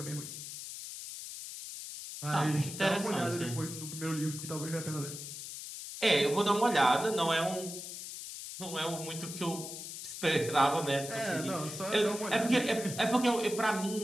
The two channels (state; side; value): noise; left; hiss, 9 dB below the sound